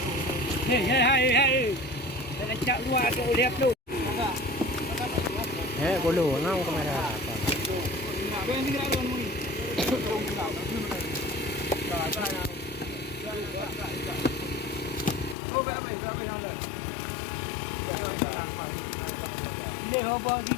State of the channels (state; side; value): drops out; right; at 15.4 s